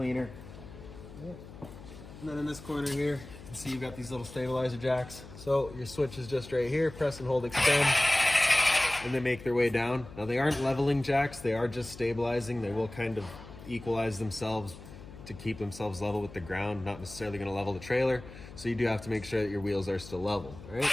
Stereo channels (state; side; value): noise; left; hum, 16 dB below the sound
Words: And then in this corner here, you can see you've got these little stabilizer jacks. So your switch is just right here, press and hold extend, and they make their way down. Now they aren't leveling jacks, they are just stabilizing. They will kind of equalize themselves to keep themselves level with the ground, not necessarily gonna level the trailer. So you do have to make sure that your wheels are still level, all right?